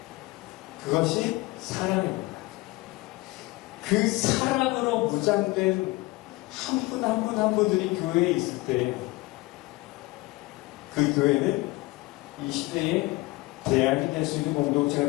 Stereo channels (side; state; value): right; quieter; 21.9 dB